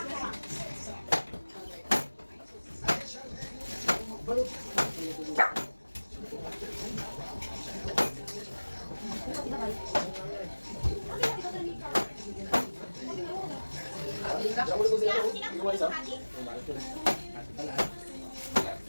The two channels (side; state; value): both; inverted; correlation -1.00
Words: Diyan mo lang ito. Hindi mo isa.